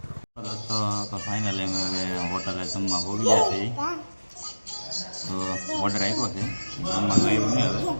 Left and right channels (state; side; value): inverted; both; correlation -1.00